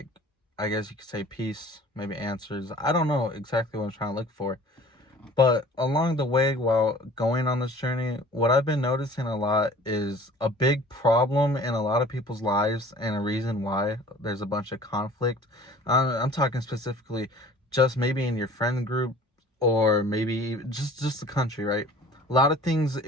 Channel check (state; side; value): normal; both; correlation 0.47